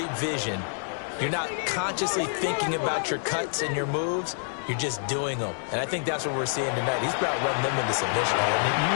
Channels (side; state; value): right; silent; digital silence